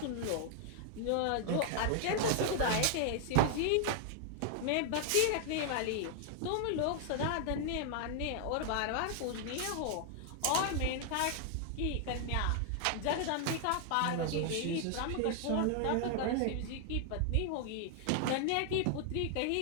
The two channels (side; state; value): both; different; correlation 0.00